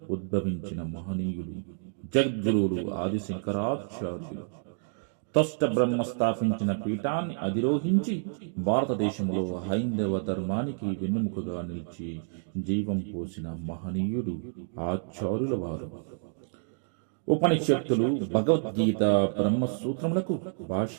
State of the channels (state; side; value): silent; left; digital silence